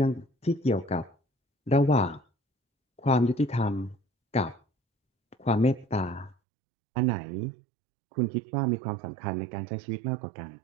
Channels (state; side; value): drops out; left; at 6.4 s